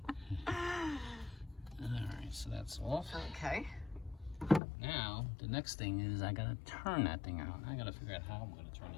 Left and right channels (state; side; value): drops out; right; at 4.6 s